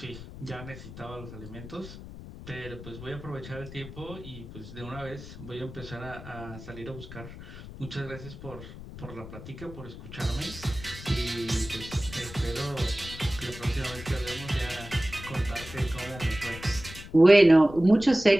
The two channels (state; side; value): noise; left; rumble, 13 dB below the sound